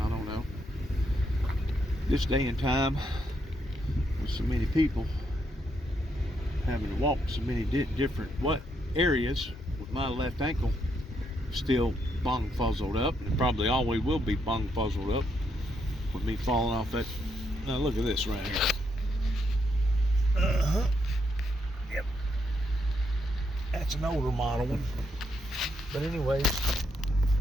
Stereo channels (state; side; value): normal; both; correlation 0.77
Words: I don't know. This day and time, with so many people having to walk so many different areas, with my left ankle still bung fuzzled up, and probably always will be bung fuzzled up with me falling off that. Now look at this right here. Yep. That's an older model one. But anyways,